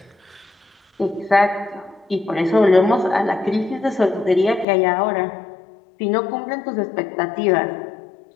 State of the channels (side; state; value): right; drops out; at 4.7 s